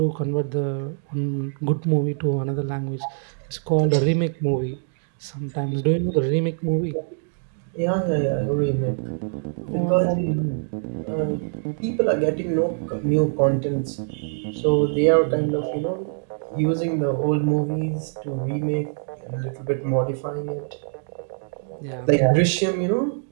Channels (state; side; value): silent; left; digital silence